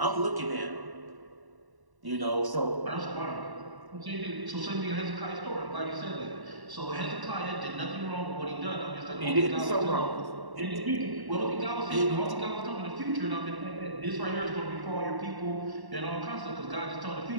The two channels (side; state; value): left; late; 1.1 ms